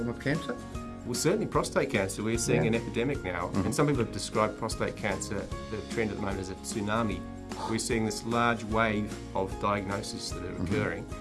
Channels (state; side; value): identical; both; correlation 1.00